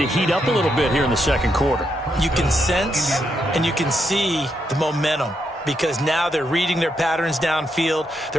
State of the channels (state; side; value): normal; both; correlation 0.80